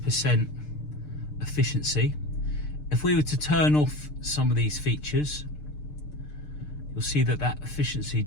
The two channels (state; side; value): late; right; 6.7 ms